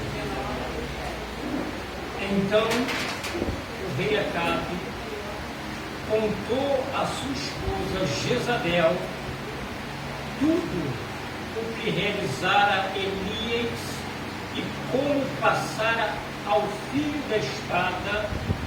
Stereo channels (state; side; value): identical; both; correlation 1.00